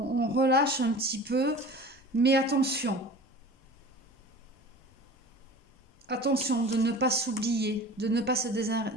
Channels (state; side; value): normal; both; correlation 0.39